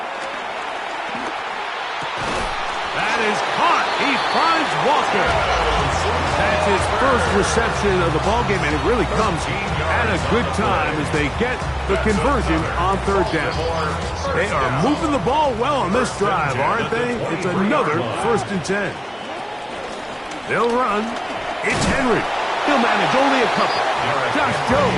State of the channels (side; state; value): both; identical; correlation 1.00